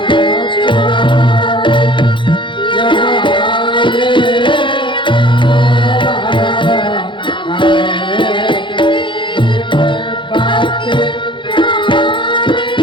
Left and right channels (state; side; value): late; right; 0.23 ms